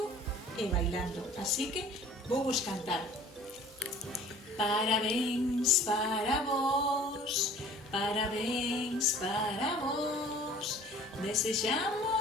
e bailando, así que vou vos cantar. Parabéns para vos, parabéns para vos.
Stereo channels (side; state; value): both; normal; correlation 0.48